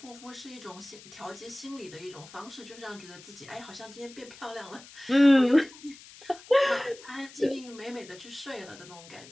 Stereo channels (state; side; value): noise; left; hiss, 19 dB below the sound